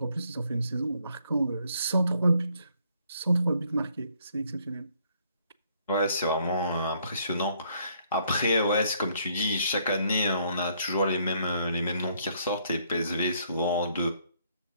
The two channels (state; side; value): inverted; both; correlation -0.68